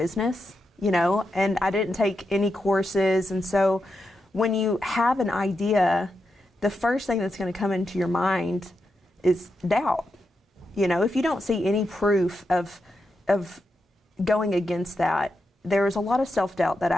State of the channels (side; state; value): both; normal; correlation 0.86